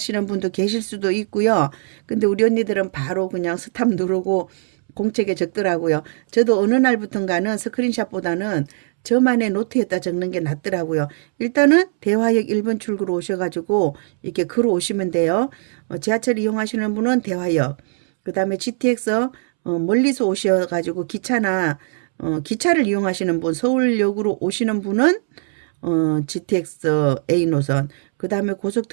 분도 계실 수도 있고요. 근데 우리 언니들은 바로 그냥 스탑 누르고 공책에 적더라고요. 저도 어느 날부턴가는 스크린샷보다는 저만의 노트에다 적는 게 낫더라고요. 일단은 대화역 1번 출구로 오셔가지고 이렇게 걸어 오시면 돼요. 지하철 이용하시는 분은 대화역, 그 다음에 GTX 멀리서 오셔가지고 기차를 이용하시는 분, 서울역으로 오시는 분은 GTX A 노선, 그 다음에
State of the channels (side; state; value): left; silent; 66 dB below the other